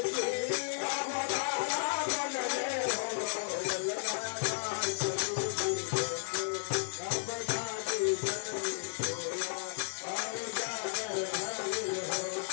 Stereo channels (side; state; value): right; silent; digital silence